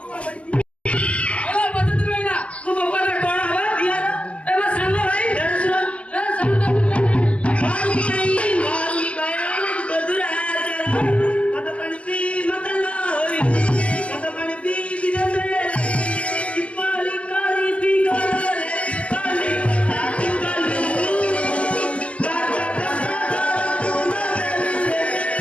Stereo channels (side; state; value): right; late; 0.061 ms